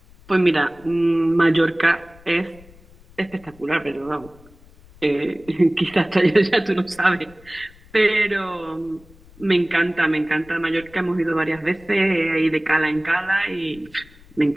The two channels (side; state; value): left; noise; rumble, 25 dB below the sound